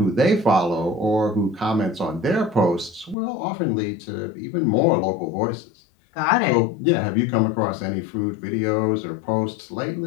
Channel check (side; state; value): right; drops out; at 3.2 s